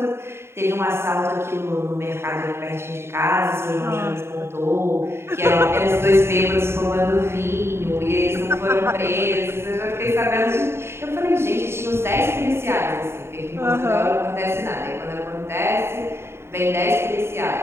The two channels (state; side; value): late; left; 0.12 ms